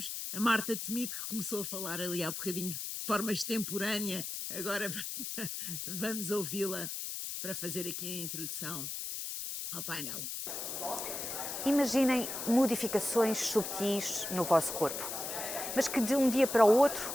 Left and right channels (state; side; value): noise; left; hiss, 5 dB below the sound